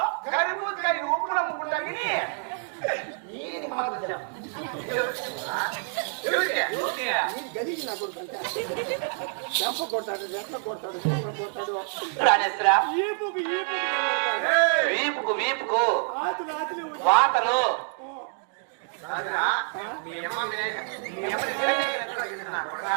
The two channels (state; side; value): silent; left; 57 dB below the other